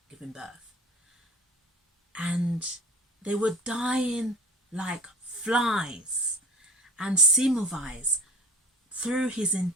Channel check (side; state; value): both; normal; correlation 0.38